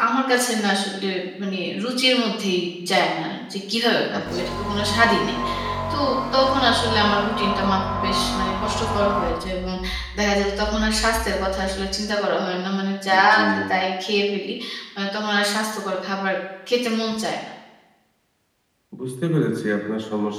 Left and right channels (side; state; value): both; identical; correlation 1.00